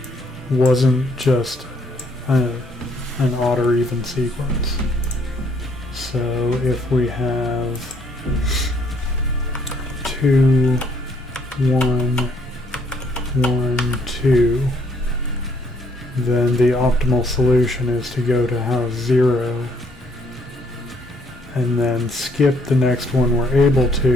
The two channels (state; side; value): normal; both; correlation 0.67